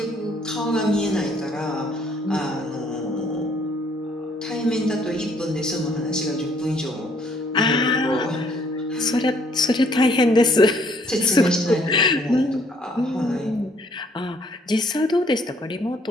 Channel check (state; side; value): normal; both; correlation 0.64